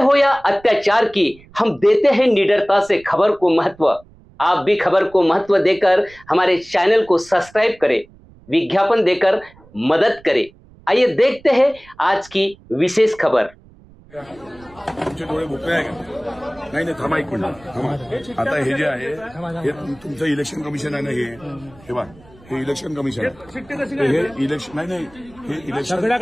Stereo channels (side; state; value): right; noise; rumble, 25 dB below the sound